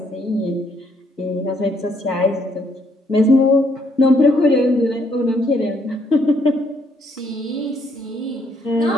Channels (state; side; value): normal; both; correlation 0.70